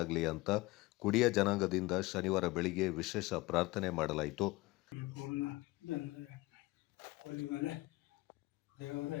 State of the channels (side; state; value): right; quieter; 21.0 dB